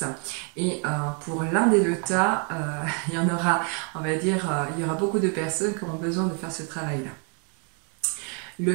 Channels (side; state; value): left; quieter; 38.2 dB